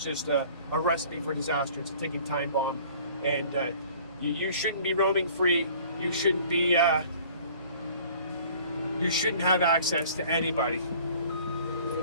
just a recipe for disaster. It's a ticking time bomb. And you shouldn't be roaming free. You shouldn't be. You shouldn't have access to anybody.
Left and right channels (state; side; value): inverted; both; correlation -0.51